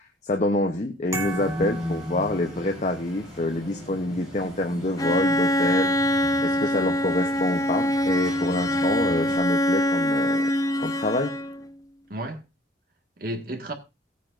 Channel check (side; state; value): both; normal; correlation 0.53